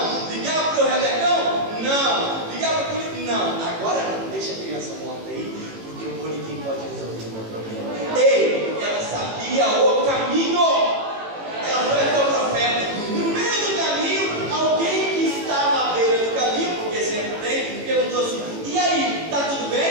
Ligava para o Rebecão? Não. Ligava para o político? Não. Agora não. Deixa a criança morta aí, porque o bonequim pode resolver o meu problema. Ei, ela sabia o caminho. Ela foi até o profeta. No meio do caminho, alguém que estava à beira do caminho, porque sempre tem, perguntou assim: e aí, tá tudo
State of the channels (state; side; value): late; left; 18 ms